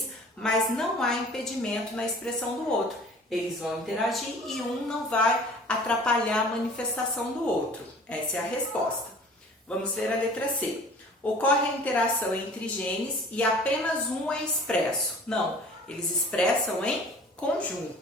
mas não há impedimento na expressão do outro. Eles vão interagir e um não vai atrapalhar a manifestação do outro. Essa é a resposta. Vamos ver a letra C. Ocorre a interação entre genes e apenas um é expresso. Não, eles expressam em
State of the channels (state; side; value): normal; both; correlation 0.46